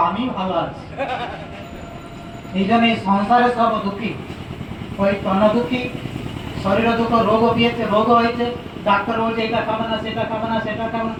আমি ভালো আছি। এই জন্য এই সংসারে সব দুঃখী, ওই তন দুঃখী, শরীরে দুঃখ, রোগ পেয়েছে, রোগ হয়েছে, ডাক্তার বলছে এটা খাবে না সেটা খাবে না সেটা খাবে না,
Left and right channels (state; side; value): identical; both; correlation 1.00